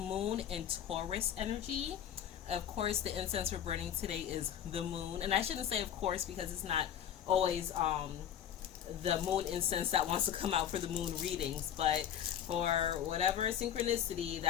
in Taurus energy. Of course, the incense we're burning today is the moon, and I shouldn't say of course because it's not always the moon incense that wants to come out for the moon readings, but for whatever synchronicity,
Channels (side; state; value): right; quieter; 9.9 dB